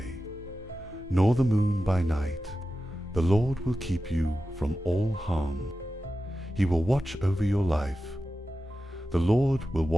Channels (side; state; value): both; normal; correlation 0.93